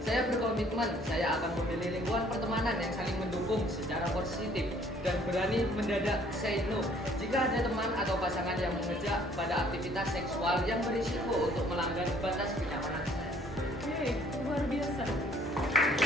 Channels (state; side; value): normal; both; correlation 0.60